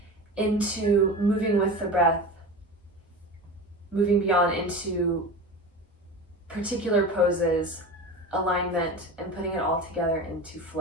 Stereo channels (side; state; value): both; normal; correlation 0.30